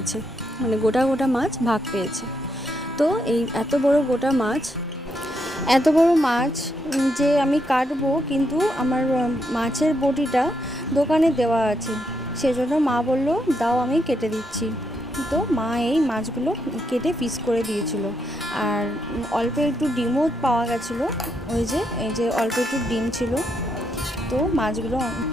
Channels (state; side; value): normal; both; correlation 0.79